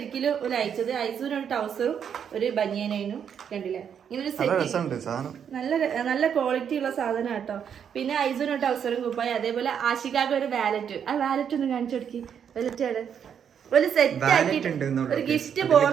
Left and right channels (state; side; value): quieter; left; 8.0 dB